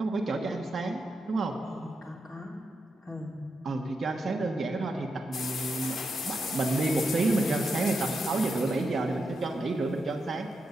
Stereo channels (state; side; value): normal; both; correlation 0.85